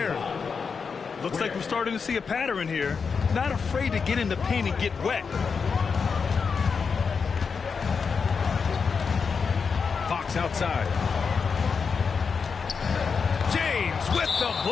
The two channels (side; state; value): right; quieter; 5.6 dB